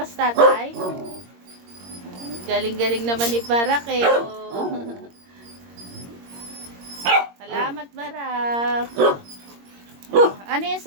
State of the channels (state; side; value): late; left; 21 ms